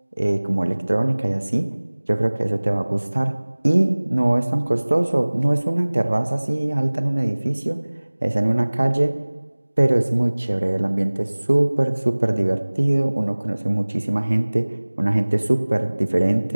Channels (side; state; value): both; inverted; correlation -1.00